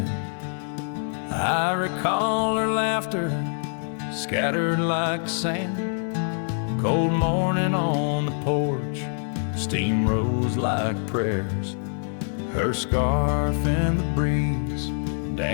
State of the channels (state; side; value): silent; right; digital silence